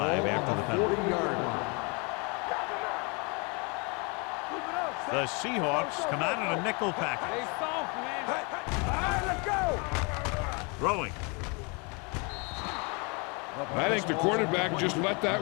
after the penalty. 40-yard line. The Seahawks come out in a nickel They package. soft, man. All right, let's go. Throwing. I think the quarterback just let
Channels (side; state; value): right; quieter; 31.8 dB